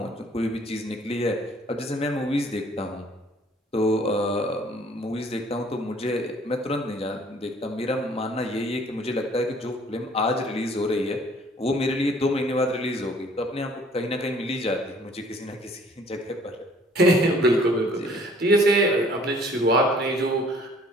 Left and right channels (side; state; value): both; normal; correlation 0.56